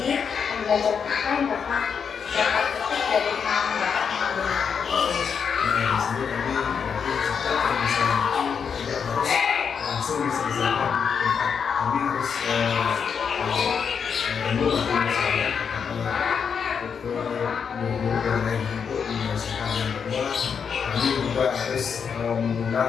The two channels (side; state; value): right; quieter; 6.6 dB